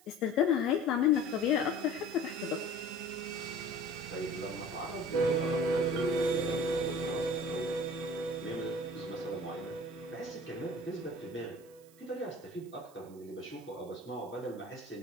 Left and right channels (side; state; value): right; noise; hiss, 26 dB below the sound